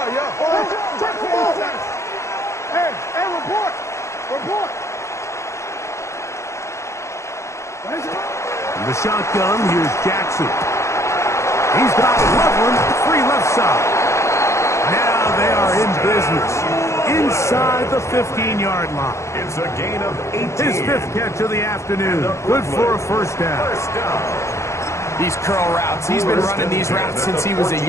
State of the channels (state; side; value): late; right; 0.14 ms